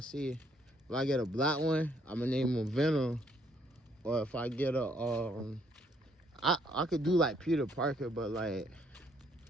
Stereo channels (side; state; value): both; normal; correlation 0.68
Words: if I get a black one, I'm gonna name him Venom. Or if I get a, I could do like Peter Parker, but like,